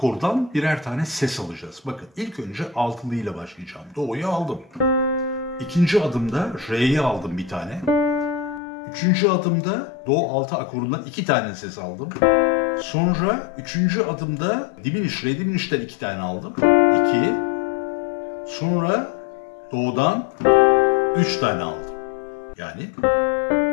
birer tane ses alacağız. Bakın ilk önce altılı ile başlayacağım. Do'yu aldım. İkinci adımda re'yi aldım bir tane. Üçüncü adımda do altı akorundan 2 tane ses aldım. Sonra üçüncü adımda diminish, re diminish'ten 2 tane aldım. 2. Sonra do'dan 3 tane aldım. Yani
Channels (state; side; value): drops out; right; at 8.6 s